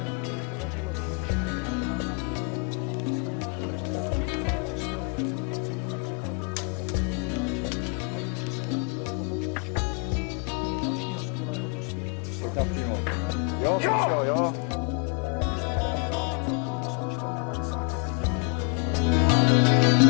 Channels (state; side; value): quieter; right; 36.3 dB